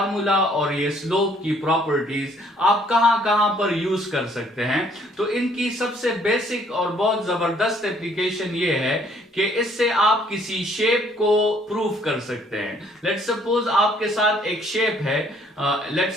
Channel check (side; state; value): both; normal; correlation 0.63